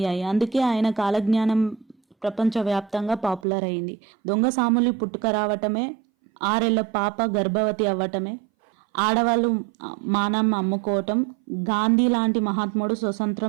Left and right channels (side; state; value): left; drops out; at 3.5 s